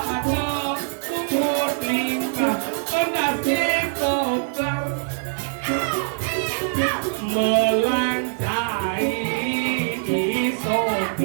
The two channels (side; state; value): left; silent; digital silence